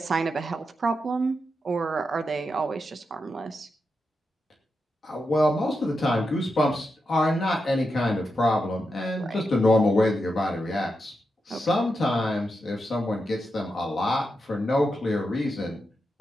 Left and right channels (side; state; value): both; normal; correlation 0.87